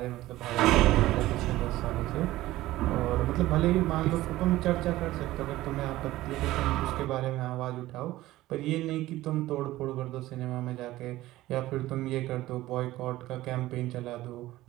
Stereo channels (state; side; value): quieter; left; 16.4 dB